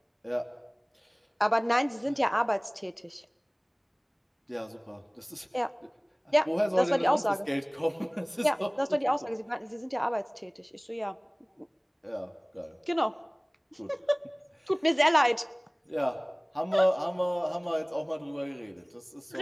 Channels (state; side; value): identical; both; correlation 1.00